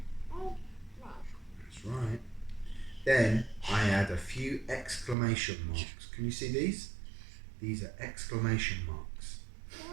8, 9. That's right. Then I add a few exclamation marks. Can you see these? These are exclamation marks.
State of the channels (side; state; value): left; drops out; at 5.2 s